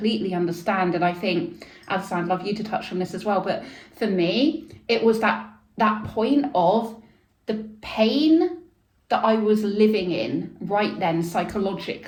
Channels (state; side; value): identical; both; correlation 1.00